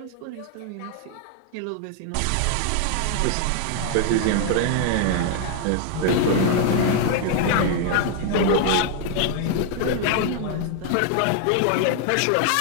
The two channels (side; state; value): both; different; correlation 0.00